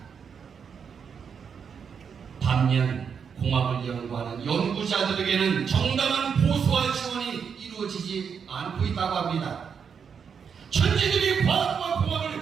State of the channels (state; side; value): quieter; left; 6.7 dB